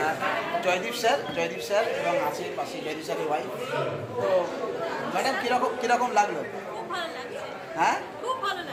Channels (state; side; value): identical; both; correlation 1.00